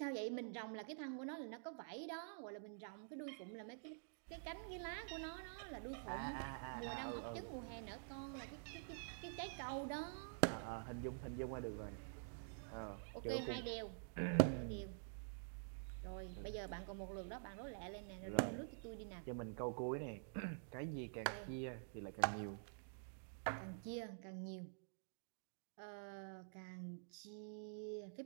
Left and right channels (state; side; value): silent; left; digital silence